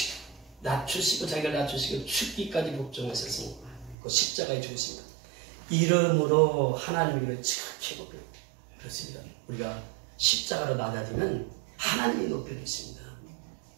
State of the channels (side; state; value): left; drops out; at 4.0 s